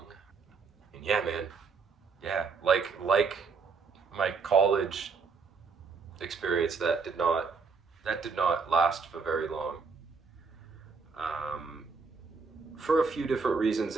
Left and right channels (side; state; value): left; quieter; 5.0 dB